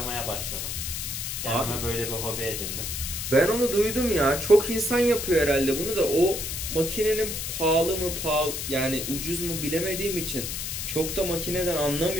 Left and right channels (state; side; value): noise; left; hiss, 4 dB below the sound